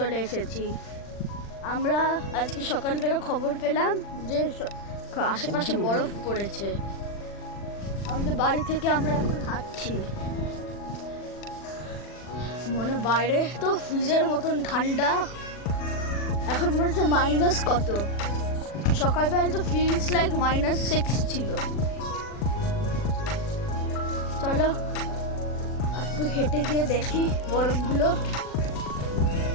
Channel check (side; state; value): right; late; 40 ms